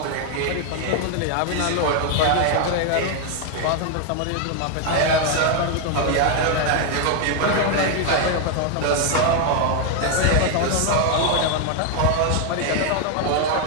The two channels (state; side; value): different; both; correlation 0.01